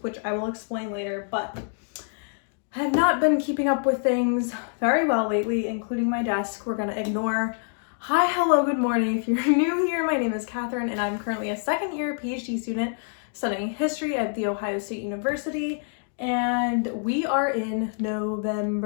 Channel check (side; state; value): right; silent; 61 dB below the other